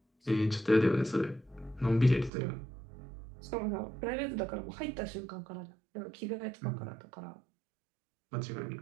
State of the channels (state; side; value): drops out; left; at 2.3 s